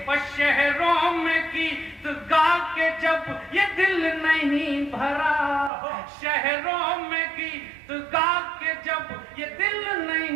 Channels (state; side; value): drops out; left; at 5.7 s